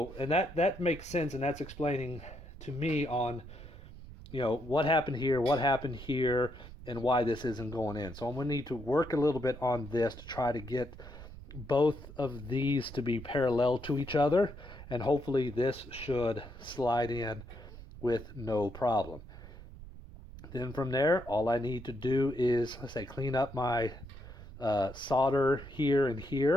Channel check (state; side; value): noise; right; rumble, 15 dB below the sound